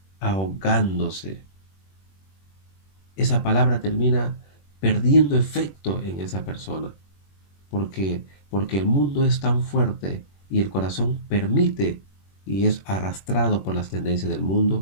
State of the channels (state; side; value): late; right; 21 ms